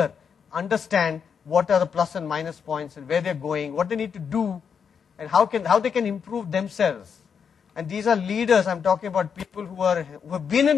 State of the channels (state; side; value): quieter; right; 6.8 dB